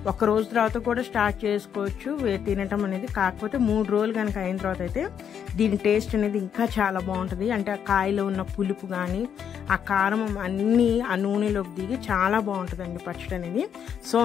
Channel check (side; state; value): right; quieter; 8.3 dB